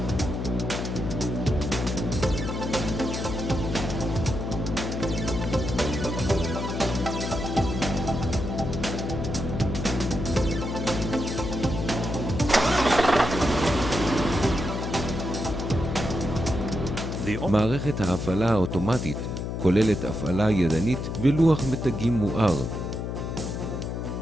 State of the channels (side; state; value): left; noise; hum, 4 dB below the sound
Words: מערכת ההפעלה האוטומטית כוללת הפעלה ידנית ולוח מתגים מואר.